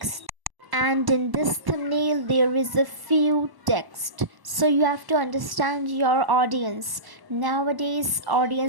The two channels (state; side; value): late; left; 1.0 ms